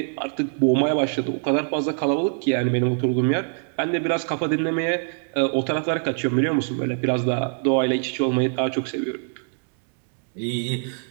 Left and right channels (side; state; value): left; silent; digital silence